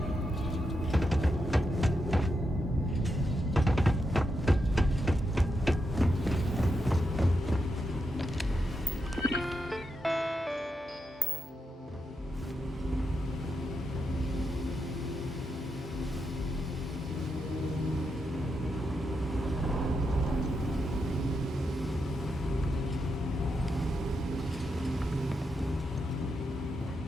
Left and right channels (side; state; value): both; normal; correlation 0.85